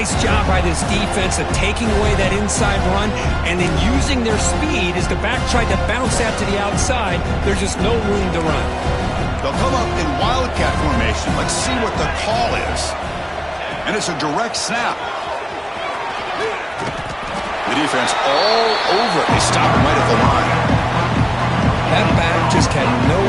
job by this defense of taking away that inside run and then using their speed as the back tried to bounce that to the outside. There's just no room to run. They'll come up in Wildcat formation. Let's see what the call is. And it's a direct snap. The defense all over it. They stop him right at the line. That back just had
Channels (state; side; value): identical; both; correlation 1.00